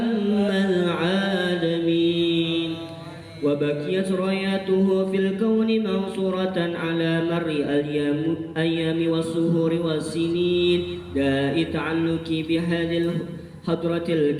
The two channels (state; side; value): identical; both; correlation 1.00